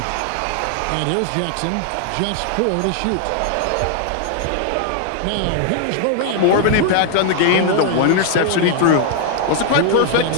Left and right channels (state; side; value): different; both; correlation 0.00